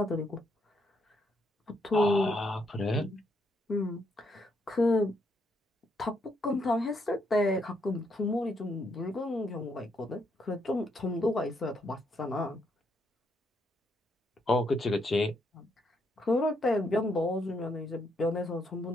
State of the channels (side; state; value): both; normal; correlation 0.75